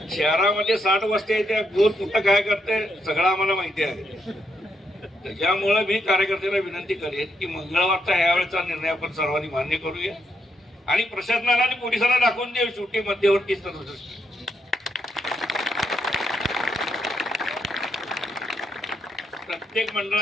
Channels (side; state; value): both; normal; correlation 0.78